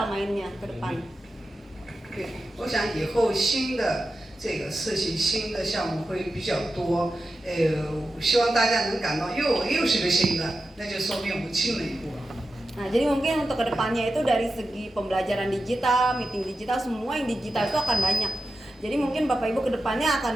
mainnya ke depan. 对，我想以后新的这个事情、新的项目会比较多，希望大家能感到又是个新的，那就说明我们进了一步了。 Nah, jadi mungkin untuk kedepannya itu dari segi pembelajaran digital, meeting digital, semua yang digital itu akan banyak. Jadi mungkin Bapak Ibu kedepannya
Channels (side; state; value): both; normal; correlation 0.91